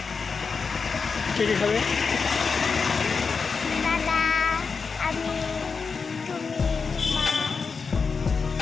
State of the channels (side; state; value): right; quieter; 5.1 dB